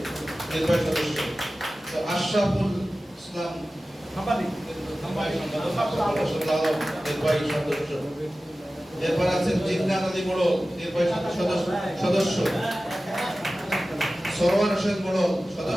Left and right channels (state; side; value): normal; both; correlation 0.96